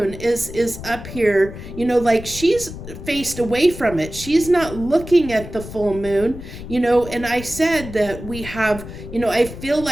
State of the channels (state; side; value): noise; left; rumble, 12 dB below the sound